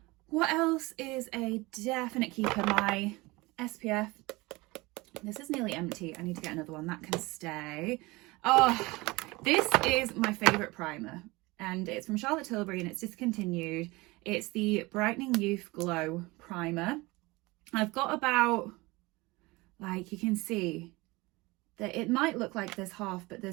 What else is a definite keeper? My SPF. This is nearly empty. I need to get another one. That can stay. Oh, this is my favourite primer, and it's from Charlotte Tilbury and it's discontinued. It's the Brightening Youth Glow Primer. I've got about, like, you can see that it might look like there's half, but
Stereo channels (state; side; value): quieter; left; 22.6 dB